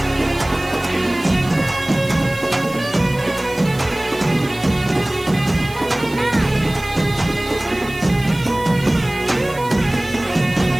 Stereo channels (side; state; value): right; noise; hiss, 19 dB below the sound